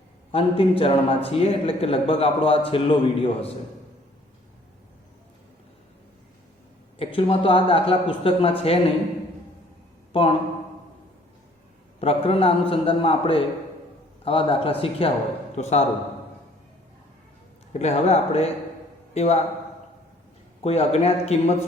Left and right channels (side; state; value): both; normal; correlation 0.58